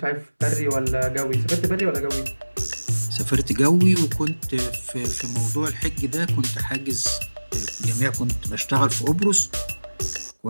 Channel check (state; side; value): inverted; both; correlation -1.00